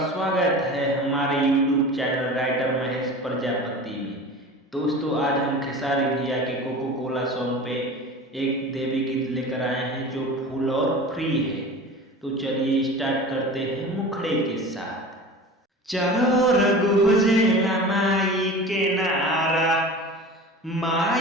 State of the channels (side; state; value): both; normal; correlation 0.36